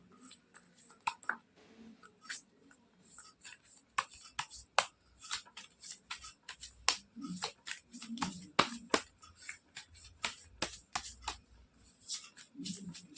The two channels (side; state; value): both; identical; correlation 1.00